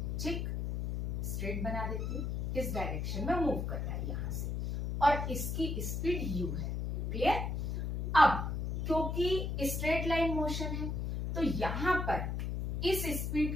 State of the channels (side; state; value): left; noise; hum, 2 dB below the sound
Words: ठीक, स्ट्रेट बना देती हूँ, इस डायरेक्शन में मूव कर रहा है यहां से, और इसकी स्पीड u है, क्लियर। अब क्योंकि स्ट्रेट लाइन मोशन है तो यहां पर इस